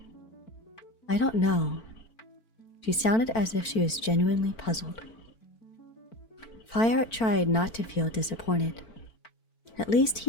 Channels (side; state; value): right; late; 4.5 ms